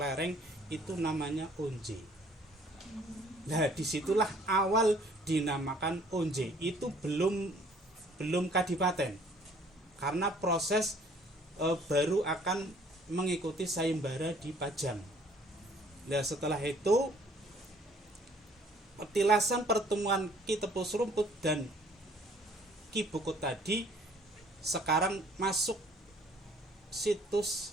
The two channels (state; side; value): normal; both; correlation 0.58